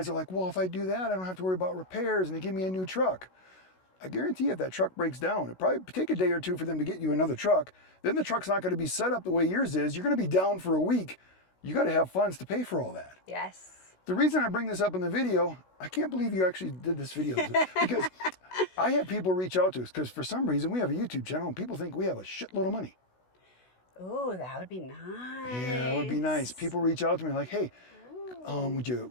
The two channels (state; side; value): late; right; 16 ms